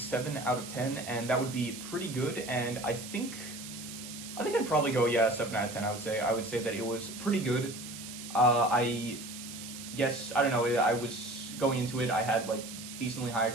out of 10, and that would be pretty good, and I think I'd probably go, yeah, 7 out of 10, I would say that it was pretty good. I guess, I don't know, I was going into it, I had like decently high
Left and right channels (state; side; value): noise; right; hiss, 11 dB below the sound